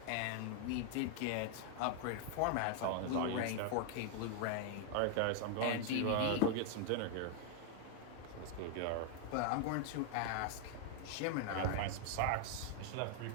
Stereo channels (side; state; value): both; different; correlation 0.00